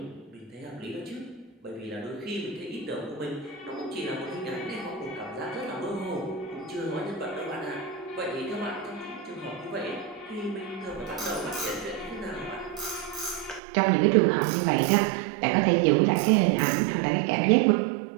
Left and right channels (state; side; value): drops out; left; at 13.6 s